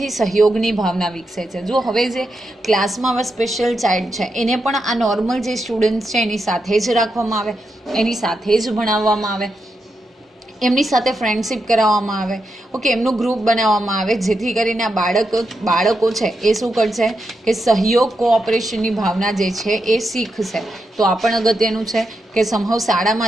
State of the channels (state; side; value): normal; both; correlation 0.85